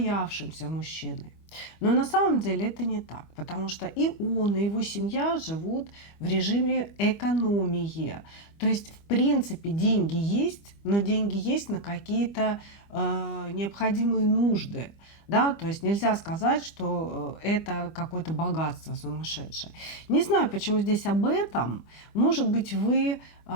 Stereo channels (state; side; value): late; right; 25 ms